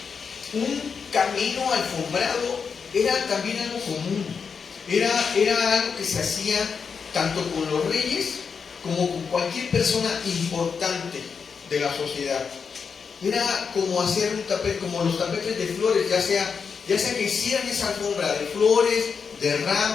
Un camino alfombrado era también algo común. Era algo que se hacía tanto con los reyes como con cualquier persona importante de la sociedad. Era como hacer un tapete, como los tapetes de flores, ya sea que hicieran esa alfombra de flores, de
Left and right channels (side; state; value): right; quieter; 5.9 dB